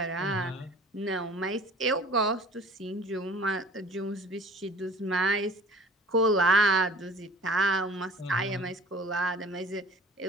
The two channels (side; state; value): both; normal; correlation 0.48